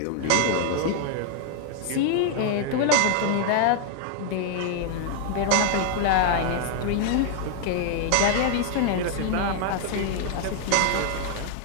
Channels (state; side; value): different; both; correlation 0.00